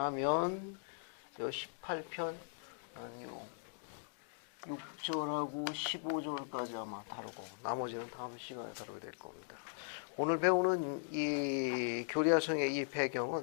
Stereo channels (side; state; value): right; silent; digital silence